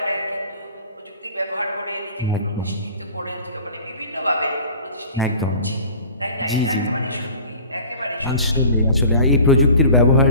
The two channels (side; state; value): both; inverted; correlation -0.45